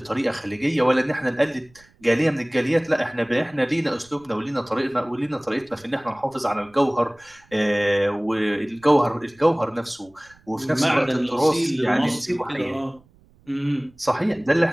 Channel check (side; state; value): right; noise; rumble, 30 dB below the sound